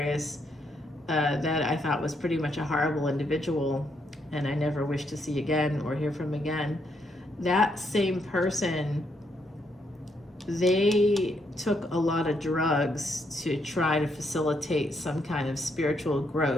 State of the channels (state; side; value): normal; both; correlation 0.76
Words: that I thought was pretty much a horrible individual and I never wish to see again or hear from again, that same person, they took a lot of drugs to try to facilitate some kind of spiritual